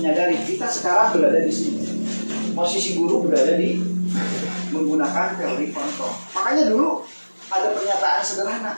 kita sekarang berada di sini. Posisi guru berada di menggunakan teori kontrol. Makanya dulu ada pernyataan sederhana.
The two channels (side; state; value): both; inverted; correlation -1.00